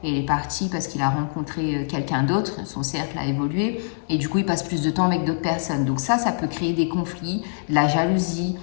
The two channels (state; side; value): silent; right; digital silence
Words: et il est parti parce qu'il a rencontré quelqu'un d'autre, son cercle a évolué et du coup, il passe plus de temps avec d'autres personnes. Donc ça peut créer des conflits, de la jalousie,